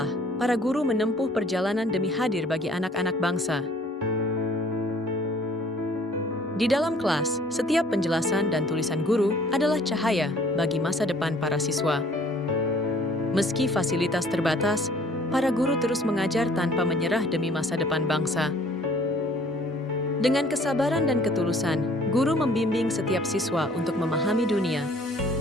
para guru menempuh perjalanan demi hadir bagi anak-anak bangsa. Di dalam kelas, setiap penjelasan dan tulisan guru adalah cahaya bagi masa depan para siswa. Meski fasilitas terbatas, para guru terus mengajar tanpa menyerah demi masa depan bangsa. Dengan kesabaran dan ketulusan, guru membimbing setiap siswa untuk memahami dunia.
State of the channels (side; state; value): both; normal; correlation 0.56